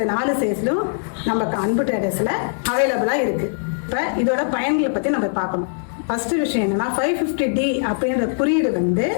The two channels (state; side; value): silent; right; digital silence